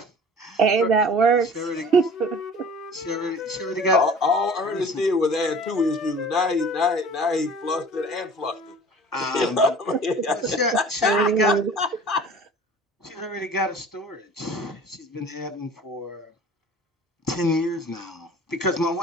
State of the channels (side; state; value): both; normal; correlation 0.45